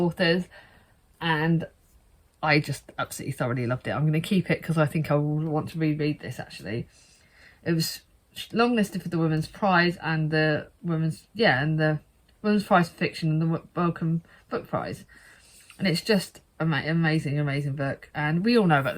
and I just absolutely thoroughly loved it. I'm going to keep it because I think I will want to reread this, actually. It was longlisted for the Women's Prize and the Women's Prize for Fiction and the Wellcome Book Prize. And it's just amazing book. And we all know about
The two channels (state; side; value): identical; both; correlation 1.00